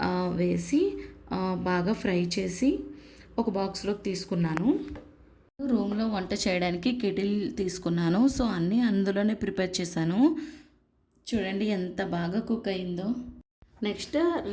వేసి బాగా ఫ్రై చేసి ఒక బాక్స్లోకి తీసుకున్నాను. రూమ్లో వంట చేయడానికి కెటిల్ తీసుకున్నాను. సో అన్నీ అందులోనే ప్రిపేర్ చేశాను. చూడండి ఎంత బాగా కుక్ అయిందో. నెక్స్ట్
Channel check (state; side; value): identical; both; correlation 1.00